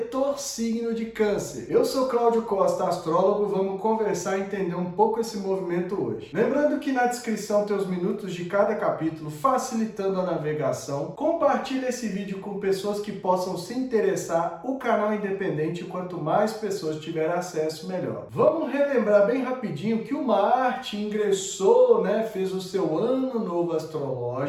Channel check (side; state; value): both; identical; correlation 1.00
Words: signo de Câncer. Eu sou Cláudio Costa, astrólogo, vamos conversar e entender um pouco esse movimento hoje. Lembrando que na descrição tem os minutos de cada capítulo, facilitando a navegação. Compartilhe esse vídeo com pessoas que possam se interessar. O canal é independente, quanto mais pessoas tiverem acesso, melhor. Vamos relembrar bem rapidinho que o Marte ingressou, né, fez o seu ano novo